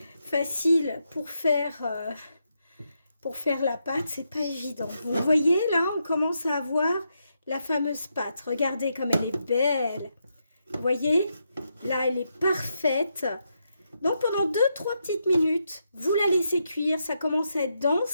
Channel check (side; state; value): both; inverted; correlation -0.82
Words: facile pour faire la pâte, c'est pas évident. Vous voyez, là, on commence à avoir la fameuse pâte. Regardez comme elle est belle. Vous voyez, là, elle est parfaite. Donc, pendant 2-3 petites minutes, vous la laissez cuire. Ça commence à être